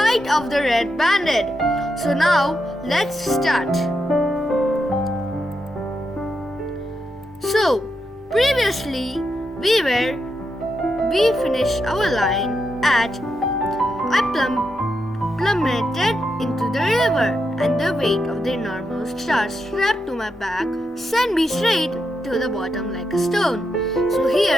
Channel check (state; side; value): normal; both; correlation 0.84